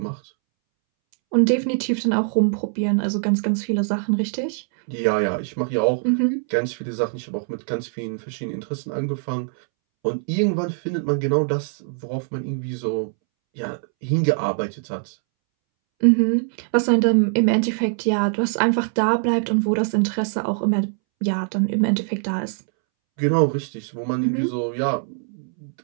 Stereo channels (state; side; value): silent; left; 64 dB below the other